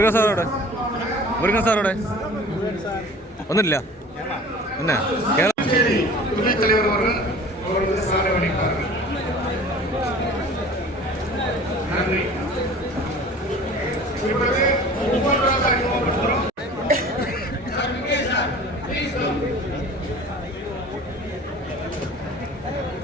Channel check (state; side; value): normal; both; correlation 0.44